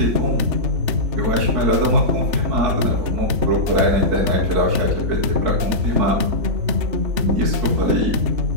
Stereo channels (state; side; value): late; left; 3.4 ms